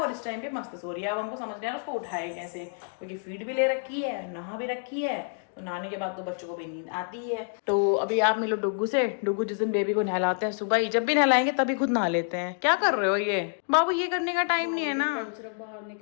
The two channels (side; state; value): right; silent; 59 dB below the other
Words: इस टाइम पे मस्त सो रही है. अब हमको समझ नहीं आ रहा उसको उठाए कैसे, क्योंकि फीड भी ले रखी है, नहा भी रखी है. तो नहाने के बाद तो बच्चों को भी नींद आती है. तो अभी आप मिलो डुग्गू से. डुग्गू जिस दिन बेबी को नहलाते हैं सुबह ही, जब भी नहलाएंगे तभी खुद नहा लेते हैं. क्या कर रहे हो ये बाबू, ये करने का टाइम नहीं है ना. बाहर